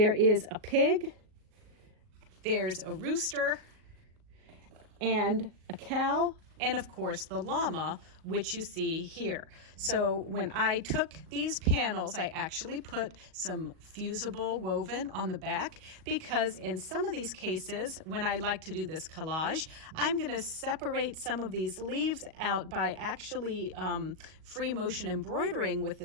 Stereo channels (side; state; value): left; late; 38 ms